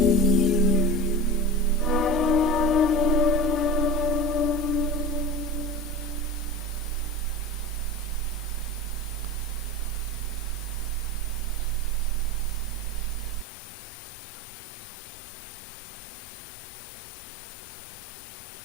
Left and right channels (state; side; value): drops out; right; at 13.5 s